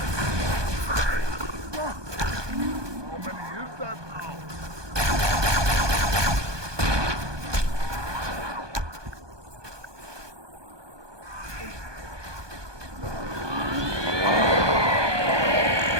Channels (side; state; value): left; late; 1.2 ms